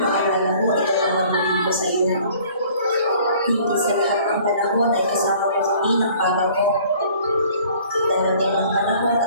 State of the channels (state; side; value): inverted; both; correlation -0.53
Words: maalala mo ito ang mabuti ko sa iyo. Hindi sa lahat ng panahon ay kasama mo kami ng papa mo. Darating ang panahon